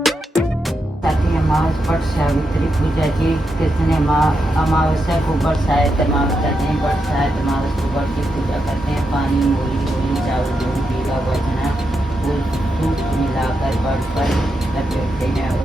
पट सावित्री पूजा जी कृष्ण अमावस्या को बरसात अमावस्या नहीं बरसात अमावस्या को बरस की पूजा करते हैं। पानी मूली मूली चावल दूध पीला वजना फूल दूध मिलाकर बर्ड पर लपेटते हैं।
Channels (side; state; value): both; normal; correlation 0.85